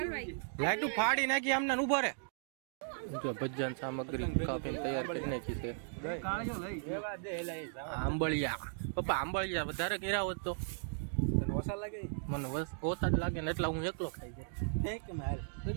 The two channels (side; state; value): left; silent; digital silence